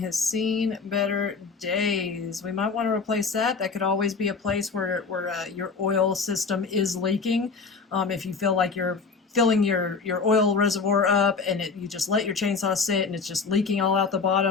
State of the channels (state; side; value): quieter; right; 4.9 dB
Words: seen better days. We might want to replace that. That could always be a place where your oil system is leaking. If you feel like you're filling your oil reservoir up and you just let your chainsaw sit and it's just leaking all out the